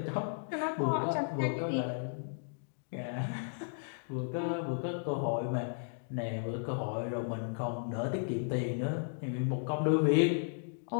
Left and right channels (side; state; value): right; silent; digital silence